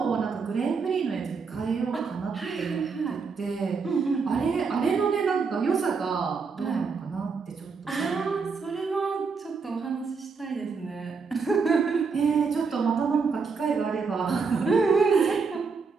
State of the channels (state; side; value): quieter; left; 5.1 dB